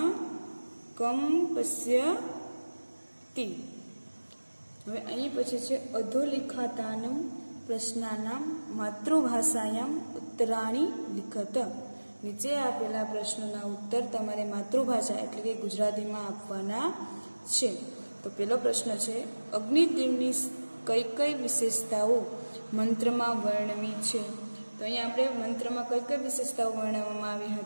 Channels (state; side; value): inverted; both; correlation -1.00